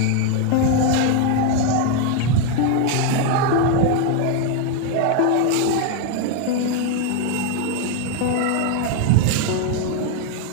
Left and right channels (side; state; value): both; different; correlation 0.01